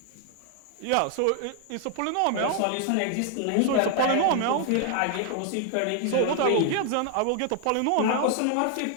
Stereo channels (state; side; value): different; both; correlation 0.00